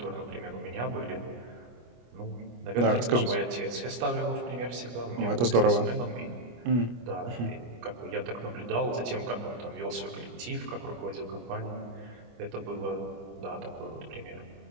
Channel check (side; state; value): left; late; 25 ms